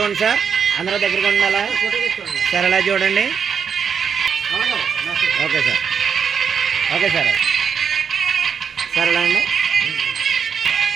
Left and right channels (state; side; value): quieter; left; 6.8 dB